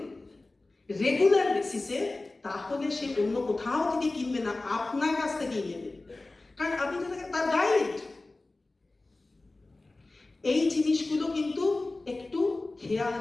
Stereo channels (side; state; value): right; quieter; 3.1 dB